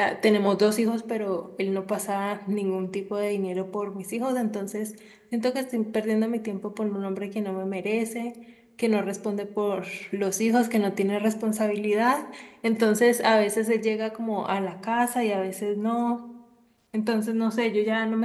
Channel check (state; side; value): identical; both; correlation 1.00